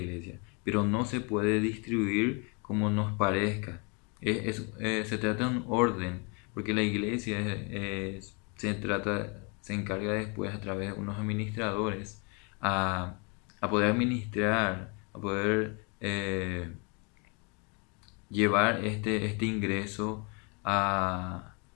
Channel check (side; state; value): right; quieter; 33.4 dB